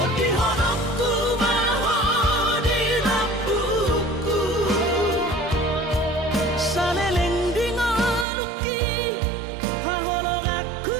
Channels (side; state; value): left; drops out; at 8.2 s